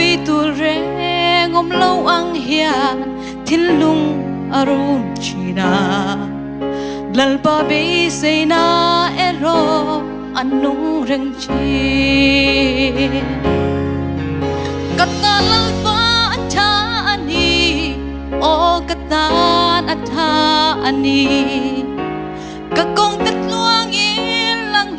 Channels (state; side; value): identical; both; correlation 1.00